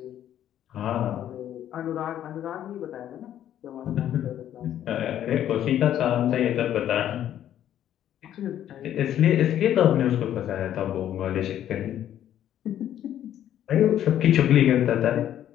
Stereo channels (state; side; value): quieter; right; 11.1 dB